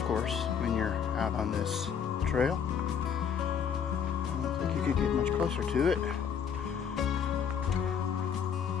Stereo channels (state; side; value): quieter; right; 7.4 dB